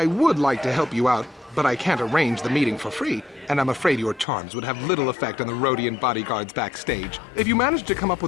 would like to help you out, but I can't arrange the meeting for free, and I'm afraid your charms would have little effect on the Rhodian bodyguards backstage. If you manage to come up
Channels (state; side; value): drops out; right; at 4.2 s